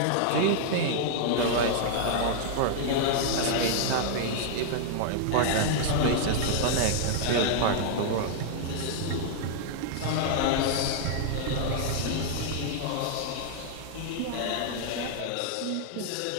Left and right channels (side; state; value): both; different; correlation -0.01